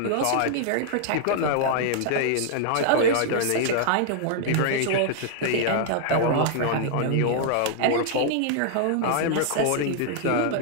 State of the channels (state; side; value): different; both; correlation 0.00